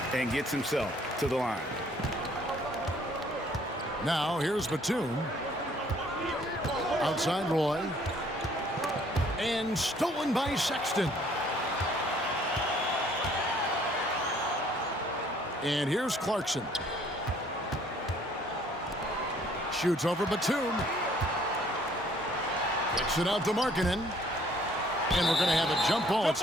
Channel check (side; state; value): both; normal; correlation 0.60